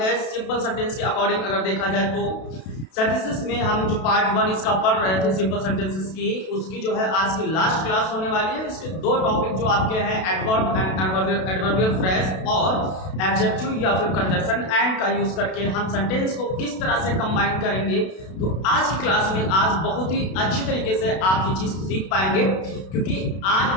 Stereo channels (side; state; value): right; late; 32 ms